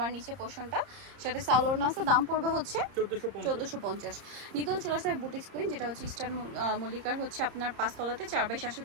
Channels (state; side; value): late; left; 30 ms